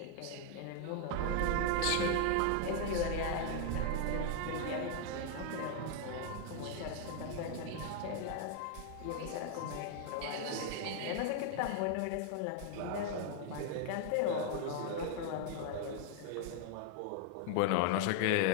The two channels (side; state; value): both; different; correlation 0.00